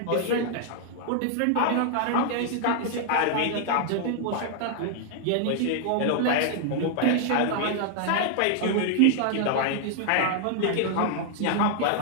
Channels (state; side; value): different; both; correlation 0.00